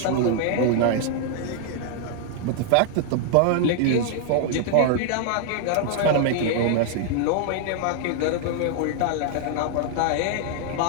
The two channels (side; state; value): both; different; correlation 0.00